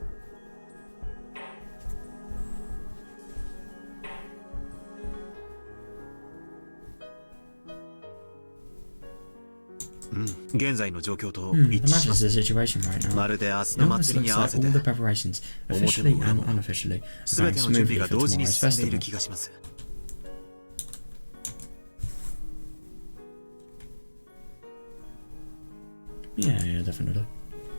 う。現在の状況と The 一致しま matches す。 the situation right now. まるで明日 It の almost 祭りに looks 合わ like せて all the preparations, officially and unofficially, are 全 going ての準備 smoothly が for 同時に tomorrow's 進んでいる festival. 気がします。 Yeah, definitely.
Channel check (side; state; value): both; inverted; correlation -1.00